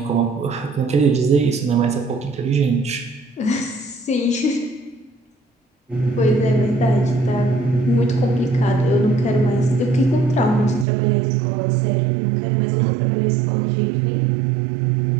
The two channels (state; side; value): drops out; left; at 10.9 s